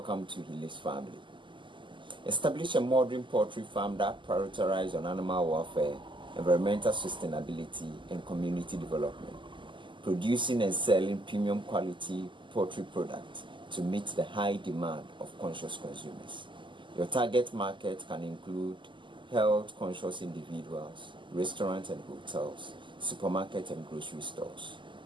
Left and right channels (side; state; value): left; late; 0.24 ms